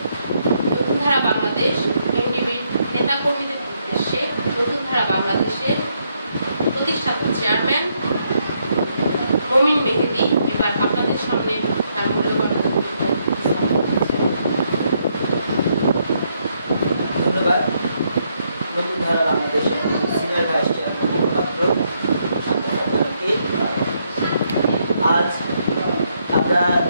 ধারা বাংলাদেশ এনডিবির নেতা কর্মীদের উদ্দেশ্যে নতুন ধারা বাংলাদেশের প্রতিষ্ঠাতা চেয়ারম্যান মমিন মেহেদী এবার আপনাদের সামনে তার মূল্যবান ধন্যবাদ। নতুন ধারা বাংলাদেশের সিনিয়র ভাইস চেয়ারম্যান পাত্র, আজ আমরা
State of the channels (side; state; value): both; inverted; correlation -0.76